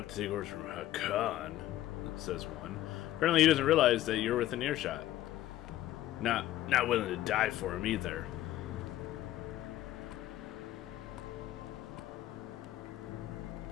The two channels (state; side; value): quieter; right; 14.1 dB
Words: to take orders from Hakan, says one. Apparently he doesn't realize that you're within earshot. Not willing to die for him either.